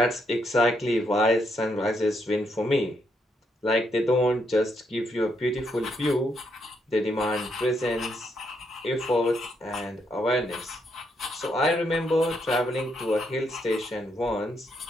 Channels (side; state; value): both; normal; correlation 0.76